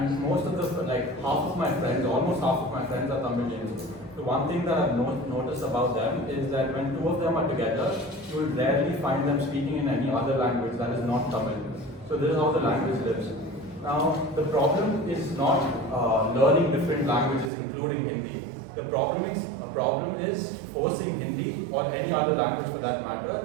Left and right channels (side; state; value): left; drops out; at 17.5 s